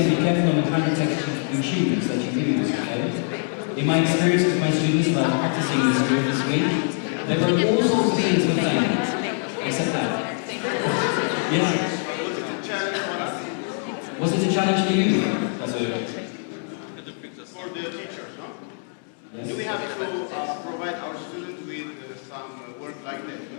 be careful on the kind of text you choose that you use, okay? In my experience with my students about practicing this group this week, there were all sorts of things with fame, except that. Yes? Was it a challenge for you? As a... For the teachers, no? Yes. Do we have to provide our students with some work like this?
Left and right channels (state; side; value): silent; right; 56 dB below the other